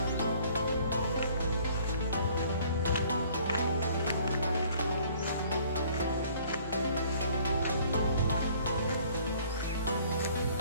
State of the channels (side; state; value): both; inverted; correlation -0.56